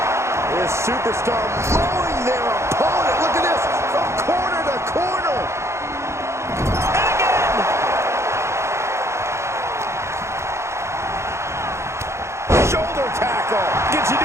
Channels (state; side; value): late; left; 0.13 ms